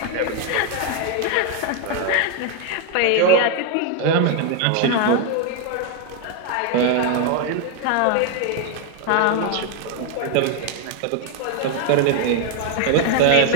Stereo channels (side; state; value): both; different; correlation 0.01